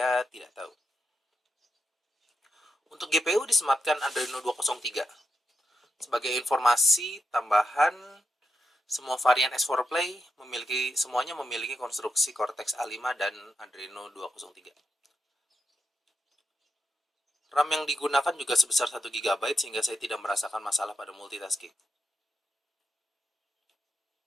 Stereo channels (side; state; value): both; normal; correlation 0.84